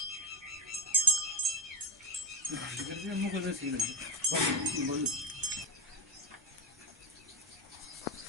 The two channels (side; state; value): both; normal; correlation 0.06